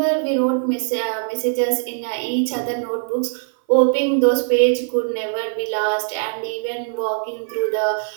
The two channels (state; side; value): silent; left; 58 dB below the other